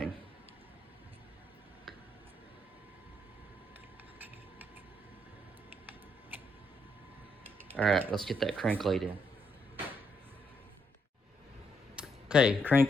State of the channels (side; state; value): both; normal; correlation 0.76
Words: All right, let's get that crank laid in. Okay,